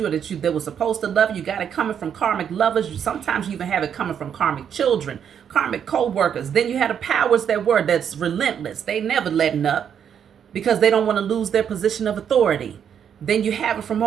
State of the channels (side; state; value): left; quieter; 8.3 dB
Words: or that were supposed to love you. You got it coming from karmic lovers. Sometimes you even have it coming from karmic children, karmic co-workers. Then you had the powers that's relentless. They never letting up because they don't want to lose their position of authority. Then you have it from